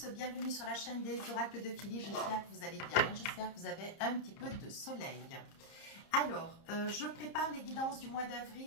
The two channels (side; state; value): right; late; 30 ms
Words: bienvenue sur la chaîne des oracles de Philly. J'espère que vous allez bien, j'espère que vous avez un petit peu de soleil. Alors, je prépare les guidances du mois